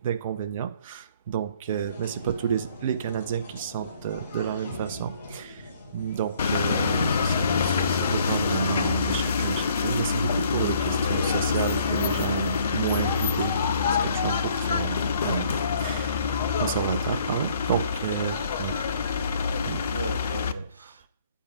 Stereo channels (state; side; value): inverted; both; correlation -0.60